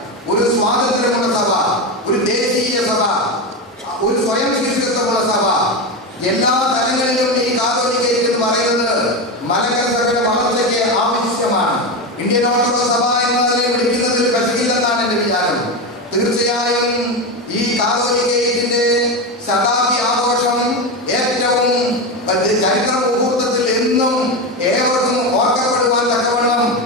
ഒരു സ്വാതന്ത്ര്യമുള്ള സഭ, ഒരു ദേശീയ സഭ, ഒരു സ്വയം ശിഷ്യത്വമുള്ള സഭ, എല്ലാ തലങ്ങളിലും ഈ കാതോലിക്ക എന്ന് പറയുന്നത് മലങ്കര സഭയുടെ വളർച്ചയ്ക്ക് ആവശ്യമാണ്. ഇന്ത്യൻ ഓർത്തഡോക്സ് സഭ എന്നതിനെ വിളിക്കുന്നതിൽ കശകില്ലെന്നാണ് എന്റെ വിചാരം. തീർച്ചയായും ഈ കാതോലിക്കയുടെ ശതാബ്ദി ആഘോഷം ഏറ്റവും ചരിത്ര മുഹൂർത്തത്തിൽ എന്നും ഏവർക്കും ഓർക്കപ്പെടുവാൻ തക്കവണ്ണം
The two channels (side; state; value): both; normal; correlation 0.16